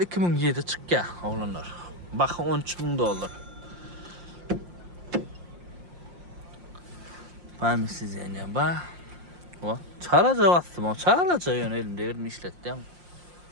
çık ya oğlanlar. Bakın $13.000. Ben mi size yani bak. O çağlaca bastım o çağlaca yönelimde yerini işlettim.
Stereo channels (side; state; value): left; late; 5.6 ms